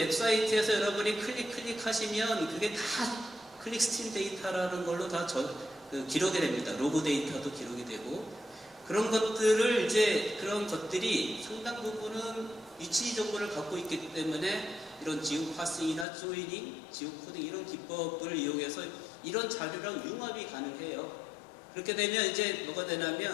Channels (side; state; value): right; drops out; at 16.1 s